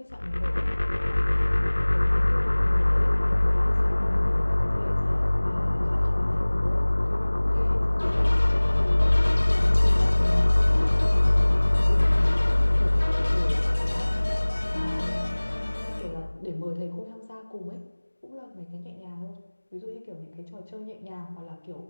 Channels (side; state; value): both; inverted; correlation -1.00